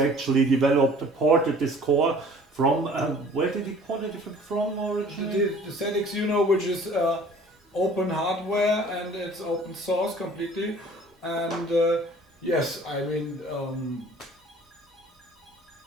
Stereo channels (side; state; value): both; normal; correlation 0.51